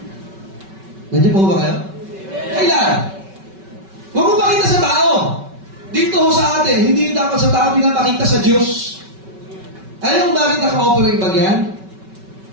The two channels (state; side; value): late; left; 5.3 ms